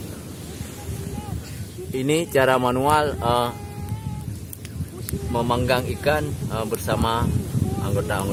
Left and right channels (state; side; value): identical; both; correlation 1.00